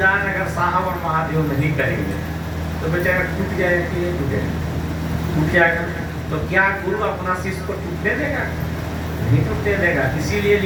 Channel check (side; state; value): both; identical; correlation 1.00